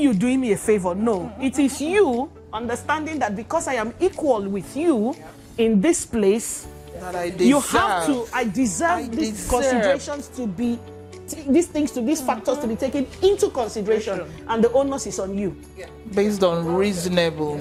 doing me a favor. No, it is you understanding that because I am equal with you in this place, that I deserve. You have to, I deserve these considerations to be, these things, to these factors to be taken into consideration, and the onus is on you. Based on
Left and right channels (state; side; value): identical; both; correlation 1.00